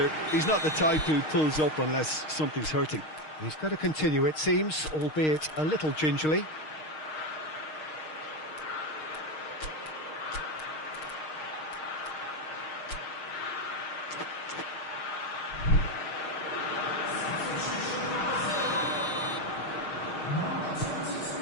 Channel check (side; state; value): right; late; 6.5 ms